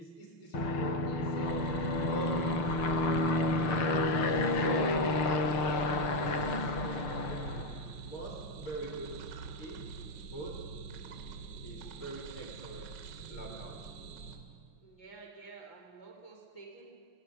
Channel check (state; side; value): late; right; 6.6 ms